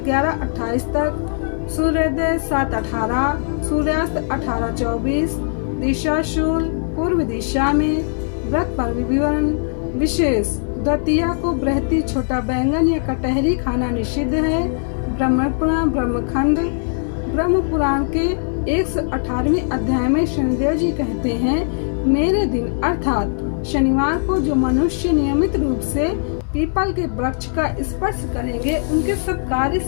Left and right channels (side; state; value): right; silent; digital silence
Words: 11:28 तक, सूर्योदय 7:18, सूर्यास्त 18:24, दिशा शूल पूर्व दिशा में, व्रत पर विवरण विशेष, द्वितीया को बृहति छोटा बैंगन या कटहरी खाना निषिद्ध है। ब्रह्म पुराण ब्रह्मखंड ब्रह्म पुराण के 118वें अध्याय में शनिदेव जी कहते हैं, मेरे दिन अर्थात शनिवार को जो मनुष्य नियमित रूप से पीपल के वृक्ष का स्पर्श करेंगे उनके सब कार्य